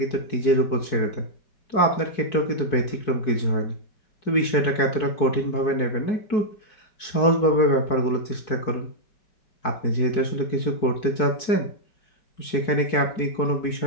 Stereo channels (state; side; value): late; right; 4.6 ms